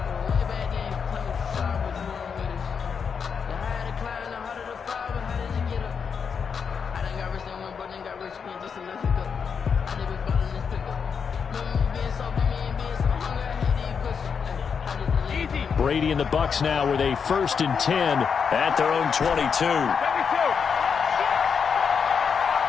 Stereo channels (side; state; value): right; quieter; 6.4 dB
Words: Brady and the Bucs now with a 1st and 10 at their own 22.